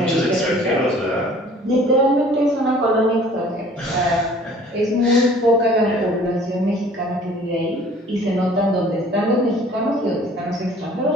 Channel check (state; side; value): normal; both; correlation 0.52